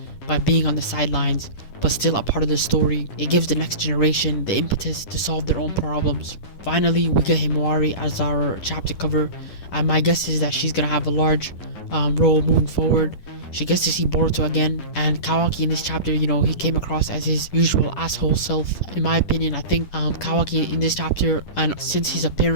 by being on the sidelines, but still a part of the story. It gives the next generation the impetus to solve their own problems. Finally, we get Himawari as our chapter cover, and my guess is that she's gonna have a large role moving forward. She gets to see Boruto again, and Kawaki in this chapter, he came across as his usual asshole self. In my opinion, I think Kawaki in this chapter, and since his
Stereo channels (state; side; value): late; right; 10 ms